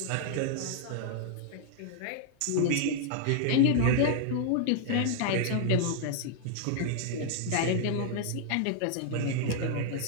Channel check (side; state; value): both; different; correlation -0.01